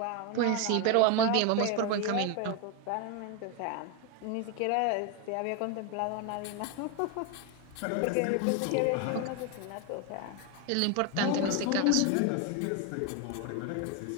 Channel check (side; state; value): both; different; correlation 0.02